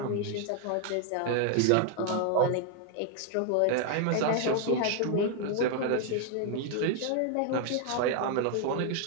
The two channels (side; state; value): both; different; correlation 0.00